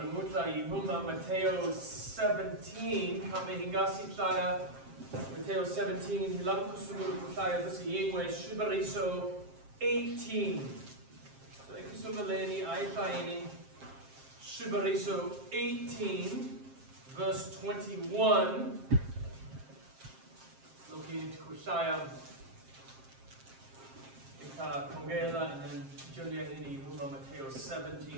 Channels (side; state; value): left; late; 7.5 ms